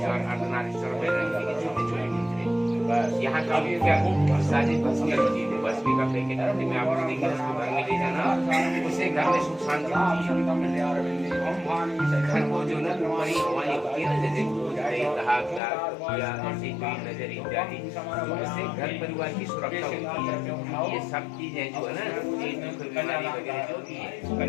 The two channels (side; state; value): right; drops out; at 15.6 s